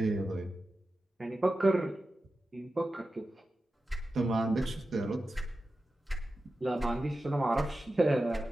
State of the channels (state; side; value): normal; both; correlation 0.92